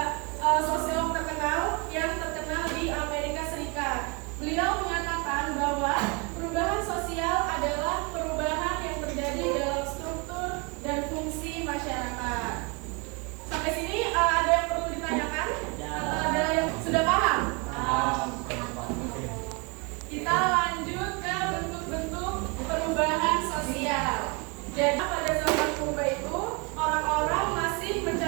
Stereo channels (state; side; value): quieter; left; 30.9 dB